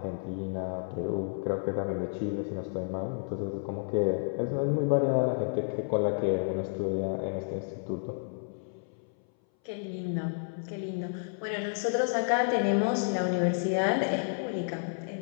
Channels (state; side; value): silent; right; 57 dB below the other